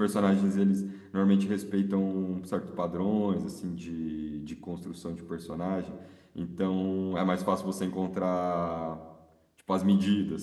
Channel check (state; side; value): identical; both; correlation 1.00